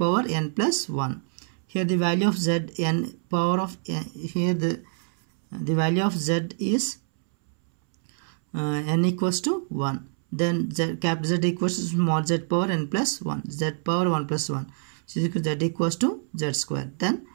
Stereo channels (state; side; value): silent; left; 61 dB below the other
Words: n plus 1. Here the value of z n power of here the value of z is n equals to 1. Then capital Z equals to small z power n plus 1, z power 1 plus 1. So z equals to z square. Then